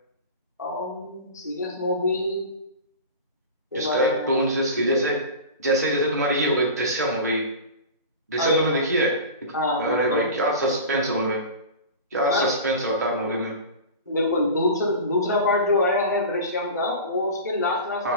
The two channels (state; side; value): inverted; both; correlation -0.32